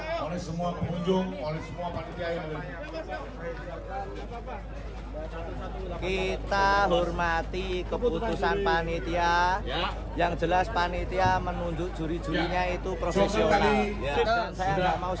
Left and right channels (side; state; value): both; identical; correlation 1.00